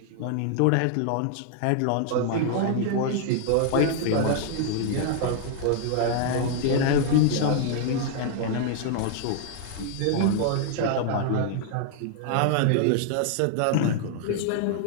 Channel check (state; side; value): different; both; correlation 0.00